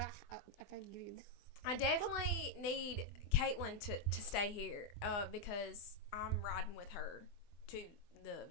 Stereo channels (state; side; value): late; right; 24 ms